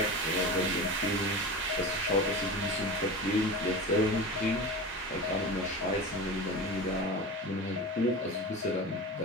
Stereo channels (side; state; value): both; normal; correlation 0.29